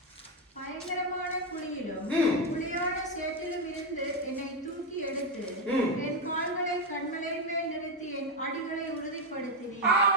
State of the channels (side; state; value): both; normal; correlation 0.07